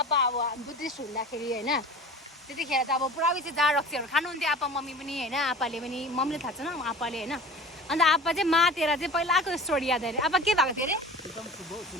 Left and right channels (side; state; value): both; normal; correlation 0.39